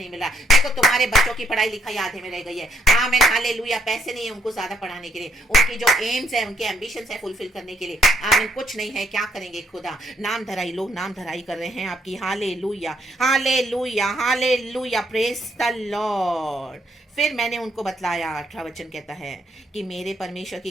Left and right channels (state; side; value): normal; both; correlation 0.71